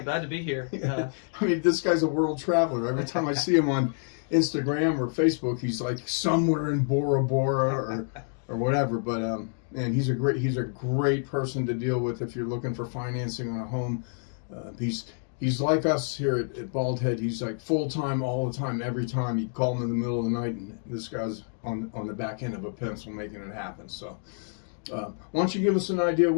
glad to be here. I mean, this guy's a world traveler. Every time I see him on Instagram or Facebook, he's like somewhere in Bora Bora or whatever. But and he's a great person to deal with if you're looking for financing on a home. He's like us here at Bald Head. He's like full time, all the time, every time. You call him in the middle of the night, and this guy's on the back end of a pencil making it happen. So, why don't you give us an idea of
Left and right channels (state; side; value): silent; right; 59 dB below the other